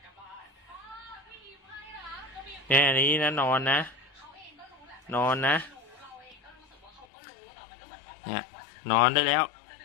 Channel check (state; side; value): drops out; right; at 7.1 s